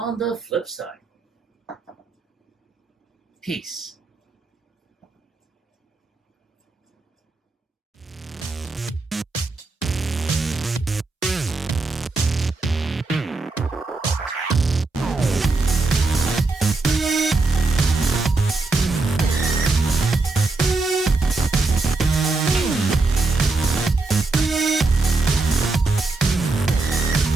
the flip side. Peace.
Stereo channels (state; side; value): quieter; left; 3.6 dB